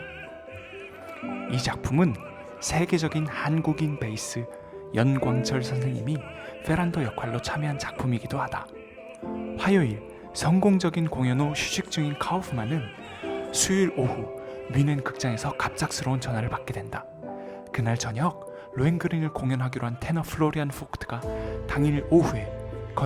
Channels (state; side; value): identical; both; correlation 1.00